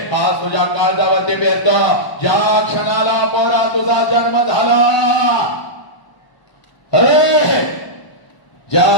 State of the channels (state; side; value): late; right; 1.0 ms